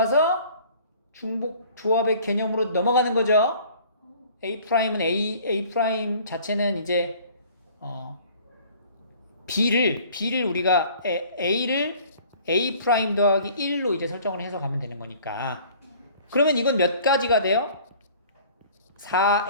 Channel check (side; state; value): both; inverted; correlation -0.51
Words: 중복 조합의 개념으로 넘어가는 거죠. A'은 A' 자체는 이제 B를 우리가 A를 A' 더하기 1로 이제 설정을 해서 가면 되는 거니까. 그러면 이건 몇 가지가 돼요?